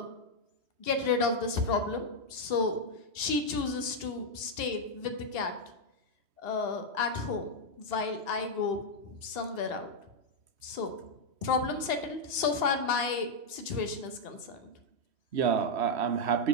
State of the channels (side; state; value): left; late; 2.7 ms